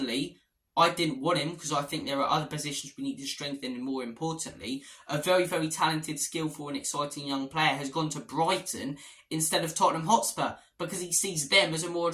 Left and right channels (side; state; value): both; identical; correlation 1.00